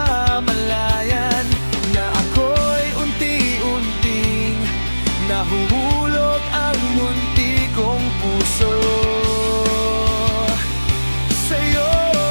na ako'y unti-unting nahuhulog ang munti kong puso.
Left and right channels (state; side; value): inverted; both; correlation -1.00